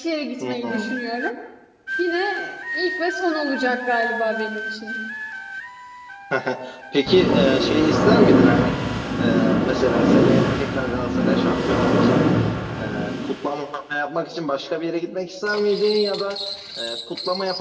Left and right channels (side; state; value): both; identical; correlation 1.00